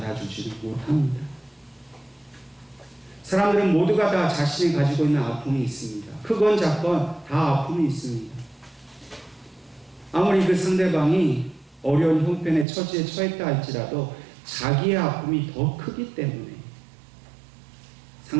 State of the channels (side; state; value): left; drops out; at 12.7 s